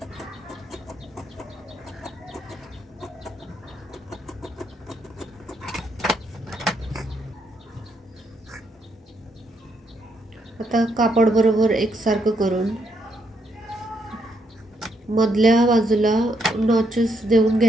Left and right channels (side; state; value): both; normal; correlation 0.76